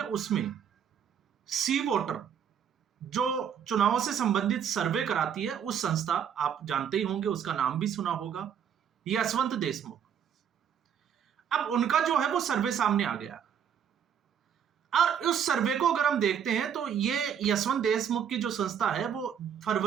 उसमें सी वोटर जो चुनावों से संबंधित सर्वे कराती है, उस संस्था आप जानते ही होंगे, उसका नाम भी सुना होगा, यशवंत देशमुख। अब उनका जो है वो सर्वे सामने आ गया और उस सर्वे को अगर हम देखते हैं तो ये यशवंत देशमुख की जो संस्था है वो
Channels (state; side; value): quieter; left; 8.2 dB